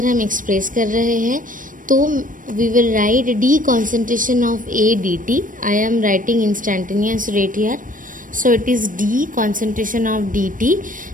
हम एक्सप्रेस कर रहे हैं तो we will write D concentration of A D T. I am writing instantaneous rate here, so it is D concentration of D T.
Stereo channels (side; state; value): left; late; 0.39 ms